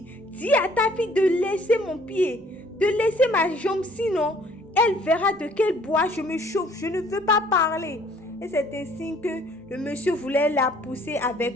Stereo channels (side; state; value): both; normal; correlation 0.59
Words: dis à ta fille de laisser mon pied, de laisser ma jambe, sinon elle verra de quel bois je me chauffe. Je ne veux pas parler. Et c'est ainsi que le monsieur voulait la pousser